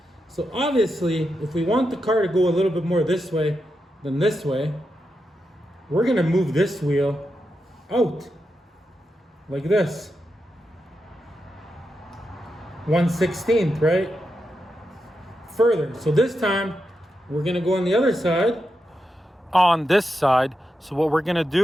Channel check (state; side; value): normal; both; correlation 0.87